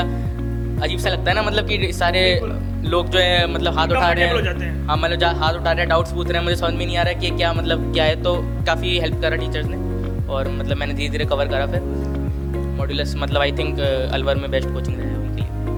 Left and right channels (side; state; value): both; identical; correlation 1.00